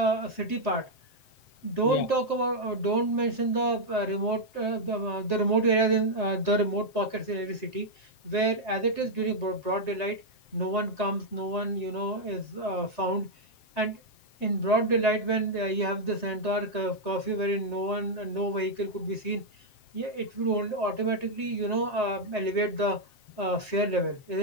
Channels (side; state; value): right; late; 7.6 ms